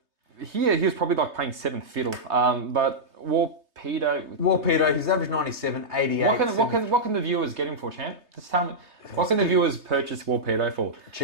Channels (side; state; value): left; late; 3.2 ms